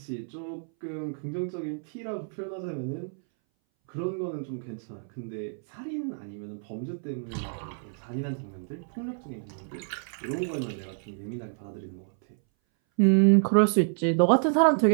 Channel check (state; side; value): silent; left; 59 dB below the other